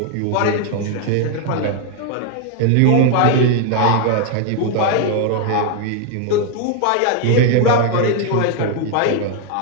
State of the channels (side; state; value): both; different; correlation 0.00